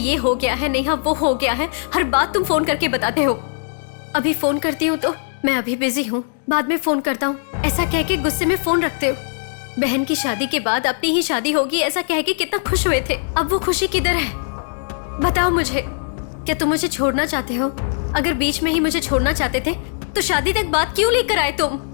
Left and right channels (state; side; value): silent; right; digital silence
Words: हो गया है, नेहा वो हो गया है, हर बात तुम फोन करके बताते हो। अभी फोन करती हूँ तो मैं अभी बिजी हूँ, बाद में फोन करता हूँ, ऐसा कह के गुस्से में फोन रखते हो। बहन की शादी के बाद अपनी ही शादी होगी ऐसा कह के कितना खुश हुए थे, अब वो खुशी किधर है? बताओ मुझे, क्या तुम मुझे छोड़ना चाहते हो? अगर बीच में ही मुझे छोड़ना चाहते थे तो शादी तक बात क्यों लेकर आए तुम?